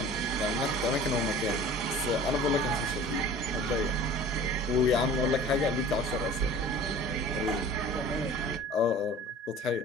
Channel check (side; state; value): both; normal; correlation 0.43